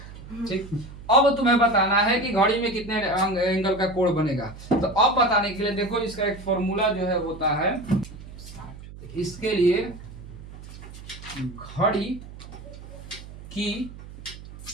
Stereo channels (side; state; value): right; noise; hum, 15 dB below the sound